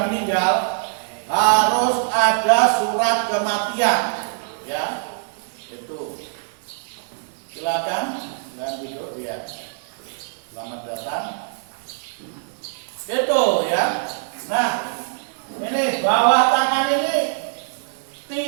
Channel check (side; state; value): left; silent; digital silence